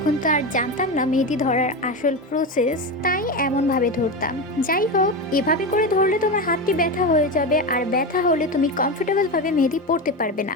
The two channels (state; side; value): normal; both; correlation 0.18